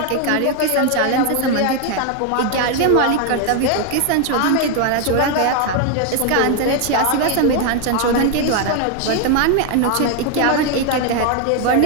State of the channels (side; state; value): both; different; correlation 0.01